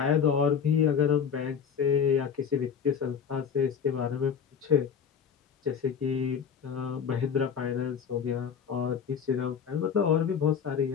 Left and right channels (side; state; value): right; quieter; 7.1 dB